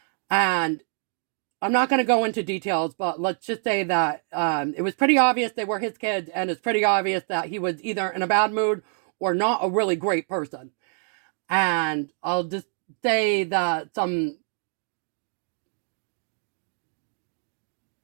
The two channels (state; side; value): silent; left; 61 dB below the other